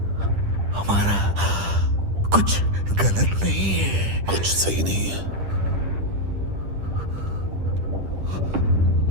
हमारा कुछ गलत नहीं है। कुछ सही नहीं है।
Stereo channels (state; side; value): late; left; 10 ms